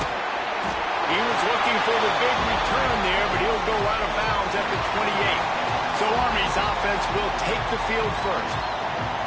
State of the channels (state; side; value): identical; both; correlation 1.00